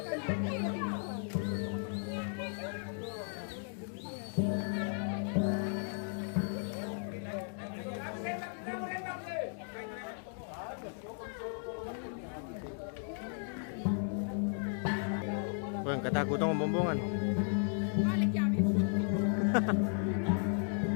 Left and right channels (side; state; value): right; silent; 54 dB below the other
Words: Wah, ketakutan bombongan. Balik ya, Bib.